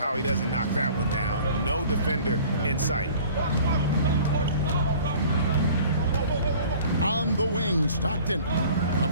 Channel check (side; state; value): both; inverted; correlation -0.48